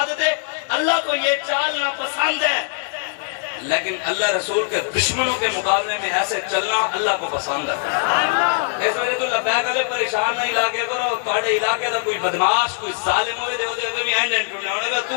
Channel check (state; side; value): silent; right; digital silence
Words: تھے اللہ کو یہ چال ناپسند ہے، لیکن اللہ رسول کے دشمنوں کے مقابلے میں ایسے چلنا اللہ کو پسند ہے. اس وجہ تو لبیک علیہ پریشان نہیں علاقے کرو. تھوڑے علاقے دا کوئی بدماش کوئی ظالم ہوئے دے دے بھی اینڈ ٹوٹنا ہونے گا. تو